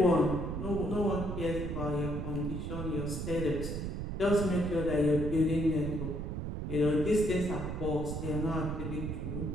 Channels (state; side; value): noise; right; rumble, 4 dB below the sound